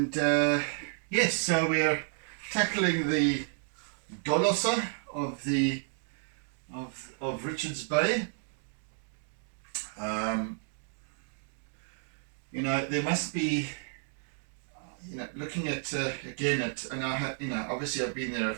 yes, so we are tackling the dolosse of Richards Bay. You know, there must be, you know, looking at again at, and I have, you know, obviously I've been there a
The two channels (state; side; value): silent; left; 57 dB below the other